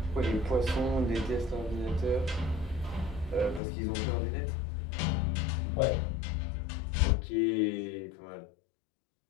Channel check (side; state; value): right; drops out; at 3.6 s